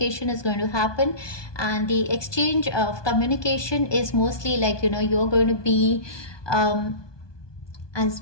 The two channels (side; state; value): right; late; 1.2 ms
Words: is going to happen, and the exchange of communication is mostly like, you know, you're going to be, as